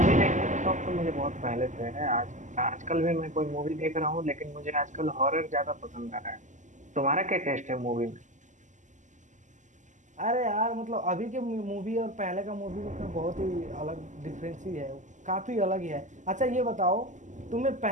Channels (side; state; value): left; late; 0.36 ms